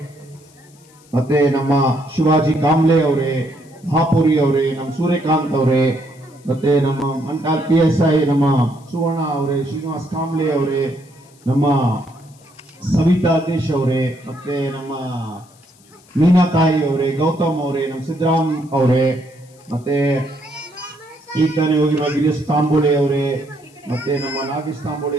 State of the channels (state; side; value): noise; left; hiss, 29 dB below the sound